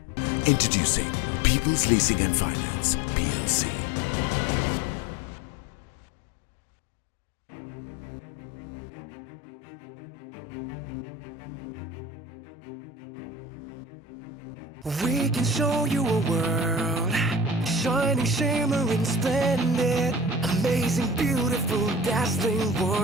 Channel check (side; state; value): both; normal; correlation 0.37